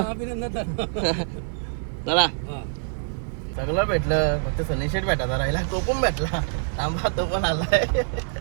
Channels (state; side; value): silent; left; digital silence